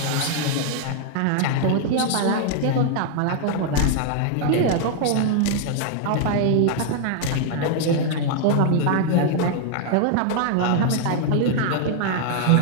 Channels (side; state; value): both; different; correlation 0.00